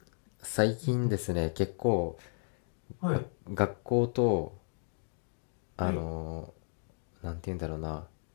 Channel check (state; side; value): silent; right; 55 dB below the other